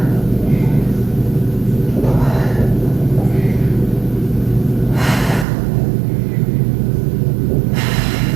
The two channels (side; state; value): left; drops out; at 5.5 s